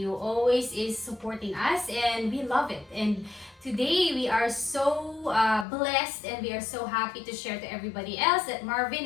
always is supporting us, and we love it. And today we are so blessed and we are so happy to share to everybody else that Marvin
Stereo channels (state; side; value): drops out; right; at 5.7 s